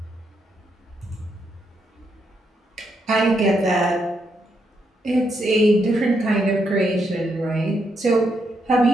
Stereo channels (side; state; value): both; normal; correlation 0.79